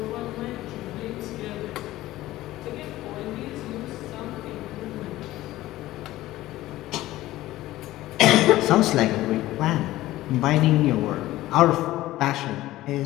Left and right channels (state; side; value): quieter; right; 16.2 dB